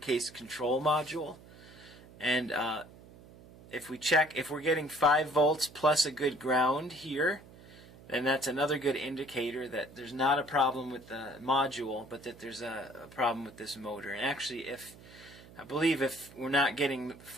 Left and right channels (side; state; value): right; noise; hum, 21 dB below the sound